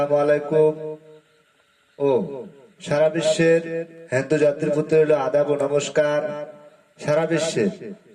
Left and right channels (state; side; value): identical; both; correlation 1.00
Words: আলাইকুম ও সারা বিশ্বের হিন্দু জাতির প্রতি রইল আদাব ও নমস্কার। সারা বিশ্বের